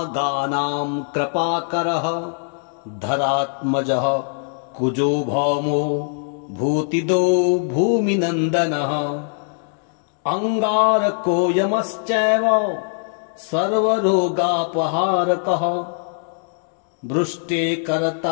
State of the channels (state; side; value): silent; right; digital silence